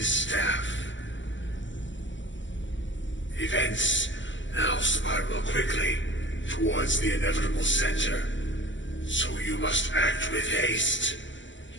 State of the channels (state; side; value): late; right; 0.55 ms